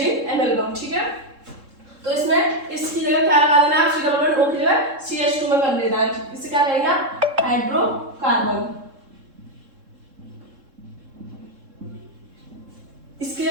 एमेलगम, ठीक है। तो इसमें इसकी जगह क्या लगा देना है, C11O की जगह CH2 में कर लेना है, इससे क्या कहेंगे, हाइड्रोकार्बन। इसके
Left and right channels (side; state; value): left; late; 3.7 ms